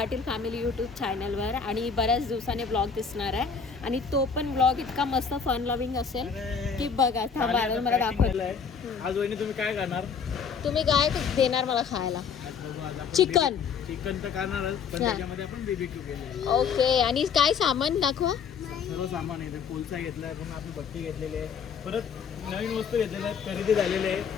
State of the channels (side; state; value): right; quieter; 6.2 dB